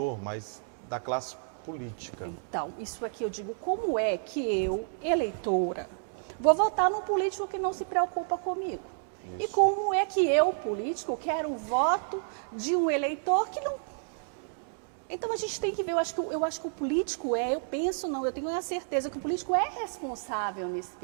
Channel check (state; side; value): silent; left; digital silence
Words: mas da classe política. Então, isso aqui eu digo, como é que eu, eleitora, vou votar num político que não se preocupa comigo? Isso. E como é que eu, político, quero o voto de um eleitor que não... Então a gente tem que ver, eu acho que o político eu tenho a certeza que o político é responsável nesse